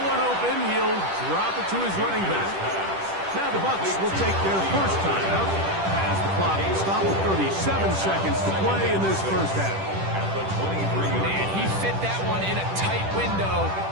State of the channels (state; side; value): late; left; 10 ms